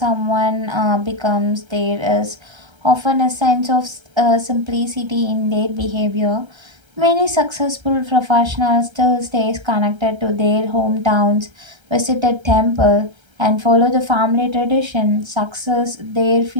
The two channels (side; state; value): left; late; 1.3 ms